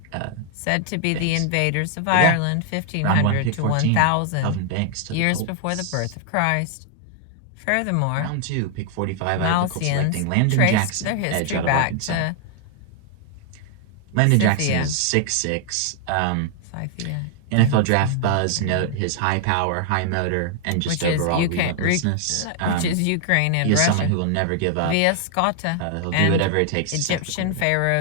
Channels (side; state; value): both; different; correlation 0.00